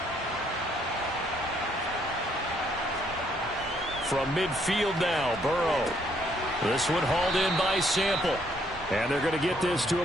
From midfield now, Burrow. This one hauled in by Sample. And they're going to get this to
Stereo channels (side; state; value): both; normal; correlation 0.69